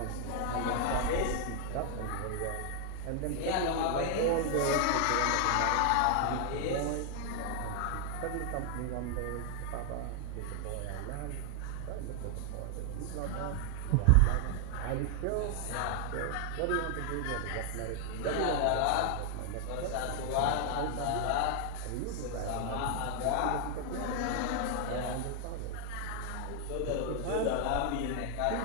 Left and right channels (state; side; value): different; both; correlation 0.00